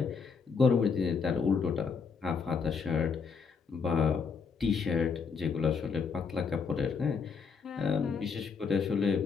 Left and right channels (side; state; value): right; quieter; 5.6 dB